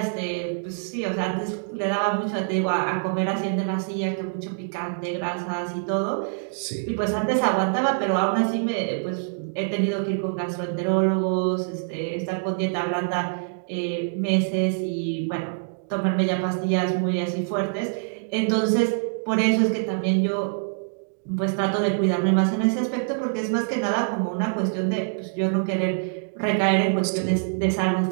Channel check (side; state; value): left; silent; digital silence